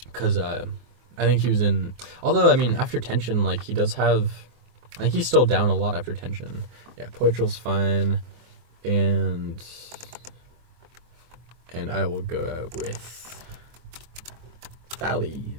Because I think he was in... Although, I mean, after Tension, like, he does have... I think he's still down a lot after Tension. Yeah, Poitrel's fine. And I will go out with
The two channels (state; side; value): late; left; 24 ms